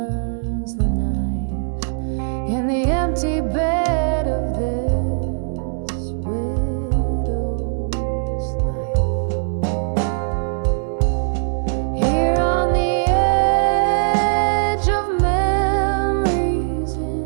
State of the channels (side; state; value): left; silent; 61 dB below the other